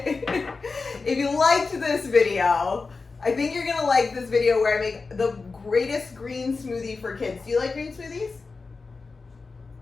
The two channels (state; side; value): quieter; right; 4.2 dB